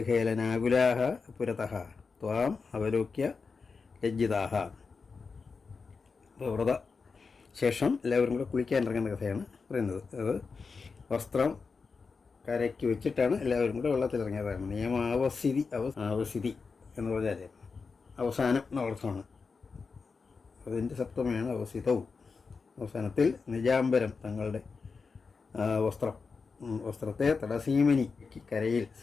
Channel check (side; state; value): right; quieter; 4.9 dB